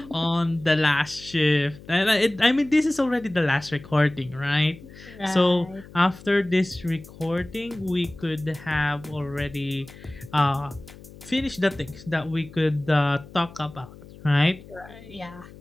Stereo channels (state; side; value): noise; left; hum, 19 dB below the sound